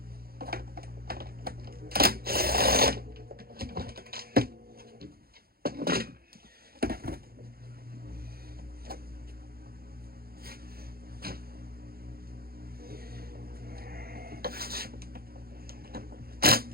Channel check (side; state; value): left; late; 0.44 ms